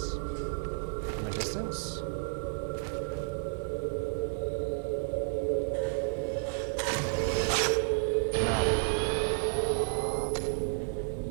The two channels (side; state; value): left; silent; digital silence